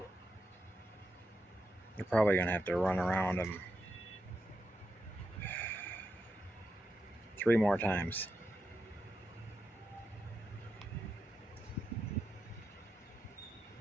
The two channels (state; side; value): normal; both; correlation 0.86